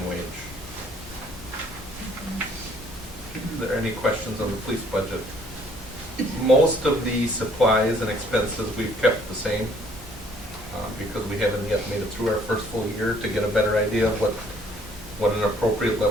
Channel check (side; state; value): both; normal; correlation 0.61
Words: wage. Are there any questions on the police budget? Most of the supplies and expenses we've kept the same because we haven't yet made it through our first full year to get a better idea of what an appropriate